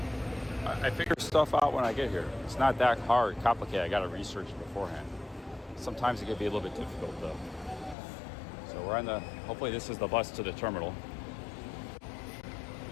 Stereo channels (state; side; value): drops out; right; at 8.0 s